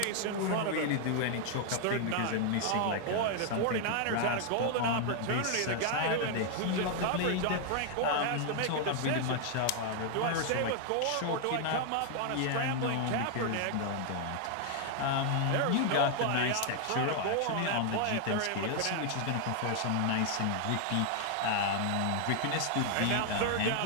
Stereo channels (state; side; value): different; both; correlation 0.00